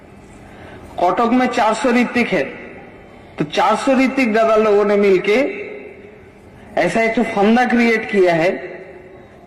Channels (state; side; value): identical; both; correlation 1.00